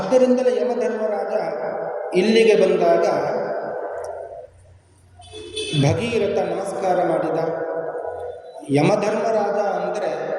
ಯಮಧರ್ಮರಾಜ ಇಲ್ಲಿಗೆ ಬಂದಾಗ ಭಗೀರಥ ನಮಸ್ಕಾರ ಮಾಡಿದ. ಯಮಧರ್ಮರಾಜ ಅಂದರೆ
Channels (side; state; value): both; identical; correlation 1.00